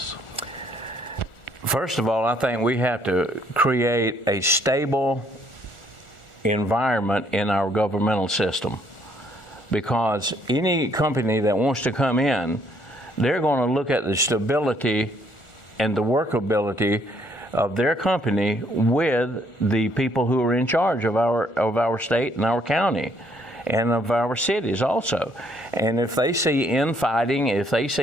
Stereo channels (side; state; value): right; late; 1.4 ms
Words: First of all, I think we have to create a stable environment in our governmental system, because any company that wants to come in, they're going to look at the stability and the workability of their company with the people who are in charge of our state and our county and of our cities also. And if they see infighting, if they